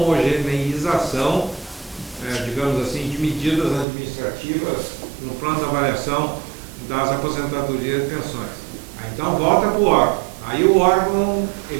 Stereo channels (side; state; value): left; drops out; at 3.9 s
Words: digamos assim, de medidas administrativas no plano de avaliação das aposentadorias e pensões. Então volta para o órgão. Aí o órgão